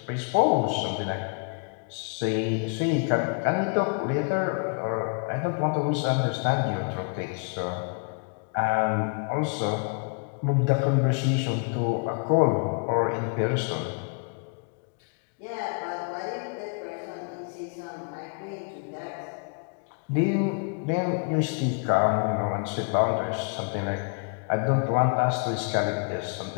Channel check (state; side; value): quieter; right; 37.6 dB